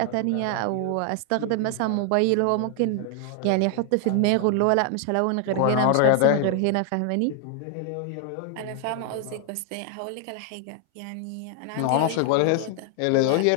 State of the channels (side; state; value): both; different; correlation 0.00